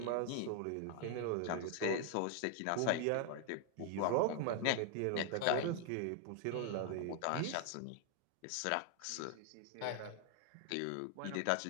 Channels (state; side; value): different; both; correlation 0.00